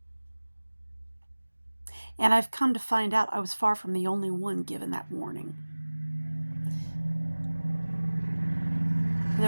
And I've come to find out I was far from the only one given that warning.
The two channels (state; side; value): inverted; both; correlation -1.00